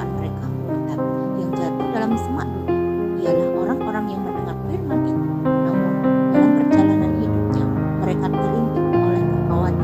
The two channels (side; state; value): both; identical; correlation 1.00